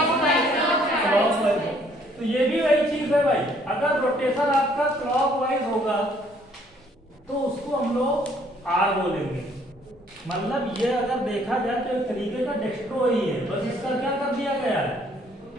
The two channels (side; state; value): both; normal; correlation 0.63